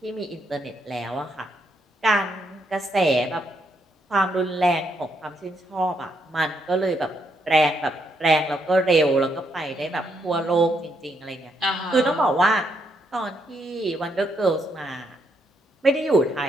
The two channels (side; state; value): both; normal; correlation 0.76